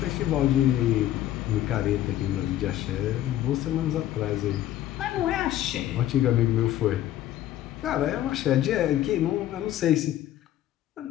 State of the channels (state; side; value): quieter; right; 12.9 dB